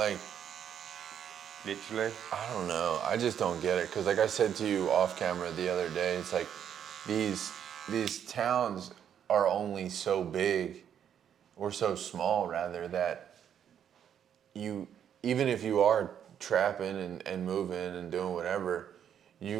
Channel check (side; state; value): left; quieter; 9.0 dB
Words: literally. I don't know. I just don't get it. Because like I said to you off camera the other day, it's like these towns are only so big, or so small rather, that you, even if you are trapping and moving and doing whatever,